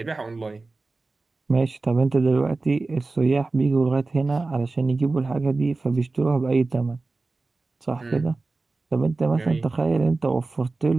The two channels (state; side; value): quieter; left; 3.5 dB